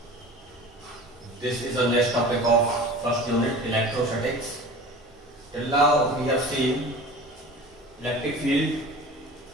this is the next topic of first unit electrostatics. Till now we have seen electric field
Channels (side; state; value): both; normal; correlation 0.38